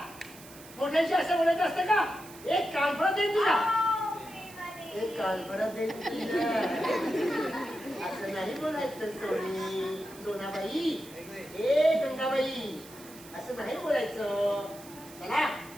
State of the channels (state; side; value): noise; right; hiss, 19 dB below the sound